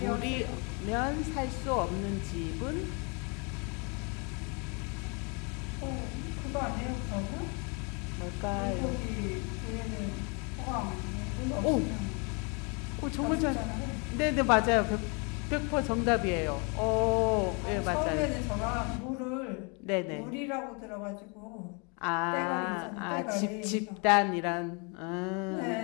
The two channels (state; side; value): quieter; right; 33.5 dB